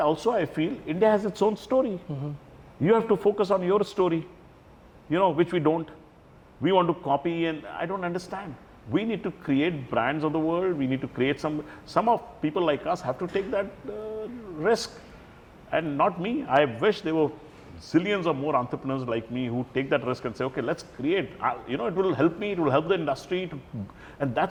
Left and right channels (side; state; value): both; identical; correlation 1.00